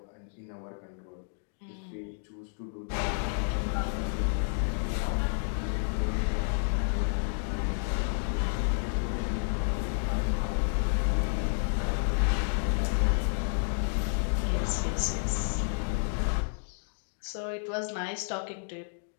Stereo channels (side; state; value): right; silent; digital silence